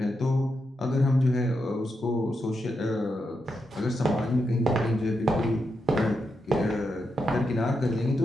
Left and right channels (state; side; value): normal; both; correlation 0.85